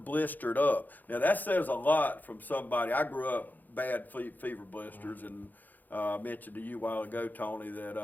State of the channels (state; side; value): late; right; 0.085 ms